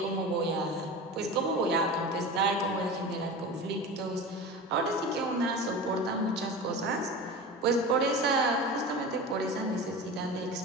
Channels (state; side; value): normal; both; correlation 0.30